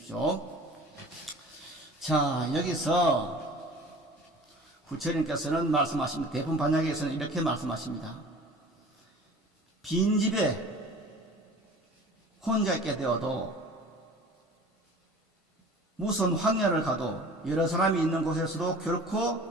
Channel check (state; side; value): normal; both; correlation 0.43